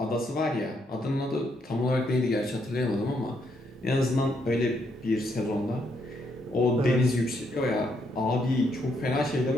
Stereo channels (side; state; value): both; normal; correlation 0.75